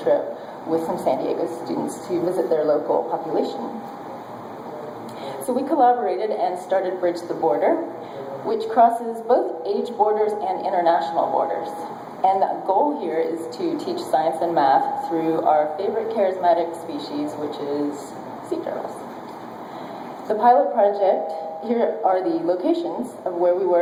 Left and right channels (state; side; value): identical; both; correlation 1.00